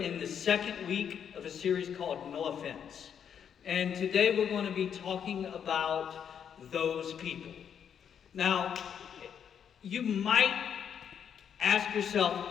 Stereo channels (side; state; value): right; quieter; 8.1 dB